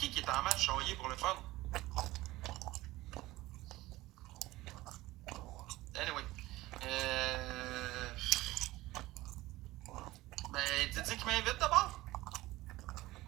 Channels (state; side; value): quieter; left; 18.2 dB